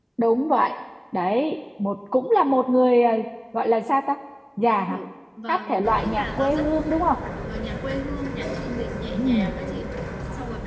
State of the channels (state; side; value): identical; both; correlation 1.00